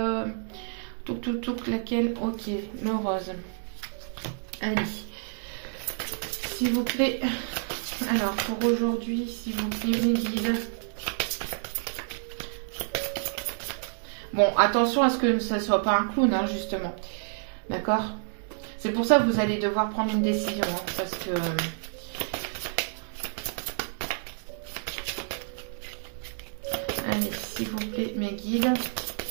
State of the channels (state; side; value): silent; left; digital silence